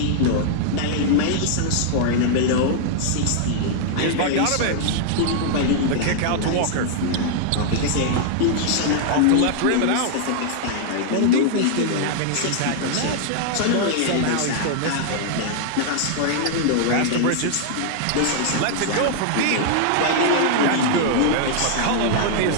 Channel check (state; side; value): different; both; correlation -0.01